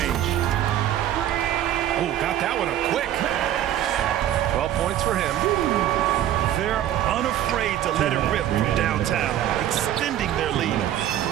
Oh, got that one up quick. 12 points for him. They're unafraid to let it rip from downtown, extending their lead.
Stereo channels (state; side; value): quieter; left; 11.8 dB